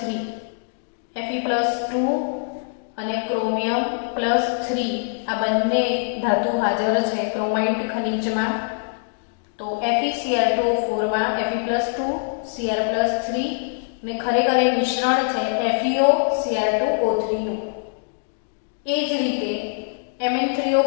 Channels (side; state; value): right; silent; digital silence